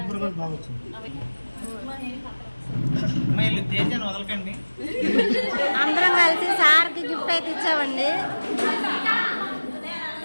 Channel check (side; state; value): both; inverted; correlation -1.00